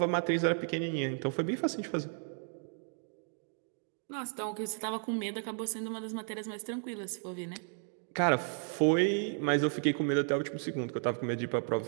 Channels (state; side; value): silent; left; 55 dB below the other